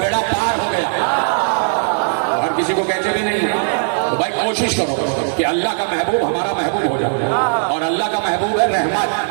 پار ہو گیا. ہر کسی کو کہتے بھی نہیں. تو بھائی کوشش کرو کہ اللہ کا محبوب ہمارا محبوب ہو جائے, اور اللہ کا محبوب ہے رحمت.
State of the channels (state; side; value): silent; left; digital silence